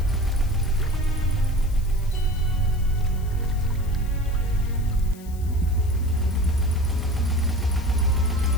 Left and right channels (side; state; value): left; noise; hiss, 22 dB below the sound